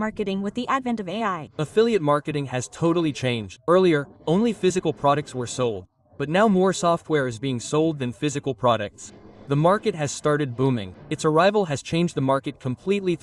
with the advent of AI? Affiliate marketing has totally changed. Earlier, only physical products were sold. But now more software is being sold than physical products. The market has started booming. Its arrival has changed the market completely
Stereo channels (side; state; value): both; identical; correlation 1.00